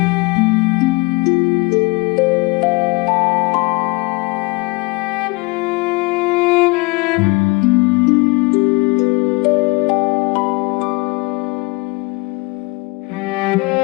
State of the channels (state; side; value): quieter; right; 26.3 dB